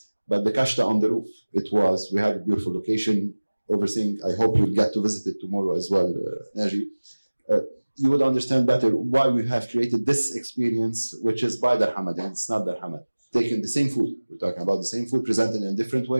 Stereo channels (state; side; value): inverted; both; correlation -1.00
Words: But the kashta on the roof, we had a beautiful location overseeing. I hope you'll get to visit it tomorrow as well, Naji. You would understand better why we have created this experience, which is by Dar Hamad, and it's not Dar Hamad. Taking the same food, we're talking about the same food presented in a different